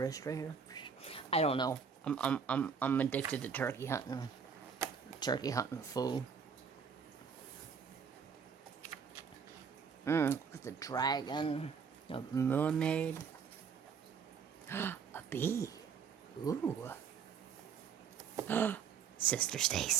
right here. I don't know. I'm addicted to turkey hunting. Turkey hunting fool. Look at the dragon. A mermaid. A bee. Ooh. Sister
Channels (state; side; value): quieter; left; 6.5 dB